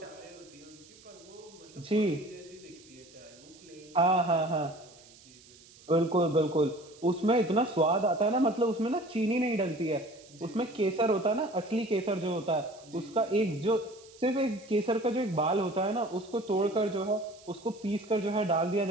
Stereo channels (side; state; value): right; noise; hiss, 24 dB below the sound